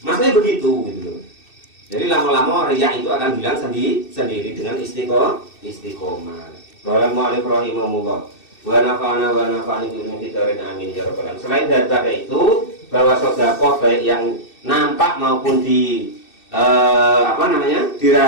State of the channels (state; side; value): late; right; 2.6 ms